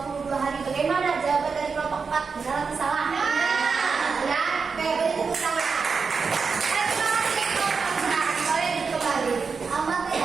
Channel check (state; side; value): quieter; left; 5.2 dB